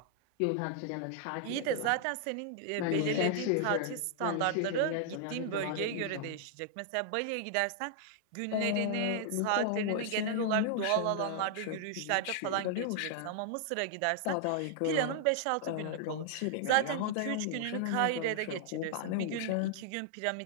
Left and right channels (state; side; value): different; both; correlation -0.01